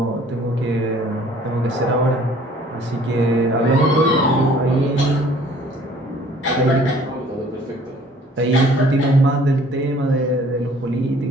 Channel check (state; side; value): normal; both; correlation 0.54